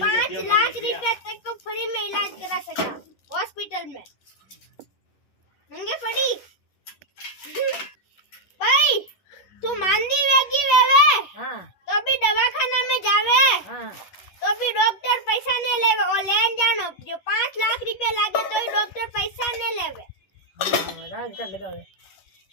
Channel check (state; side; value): late; right; 11 ms